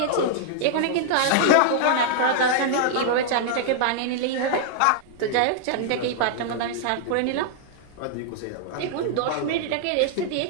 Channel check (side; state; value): both; different; correlation -0.01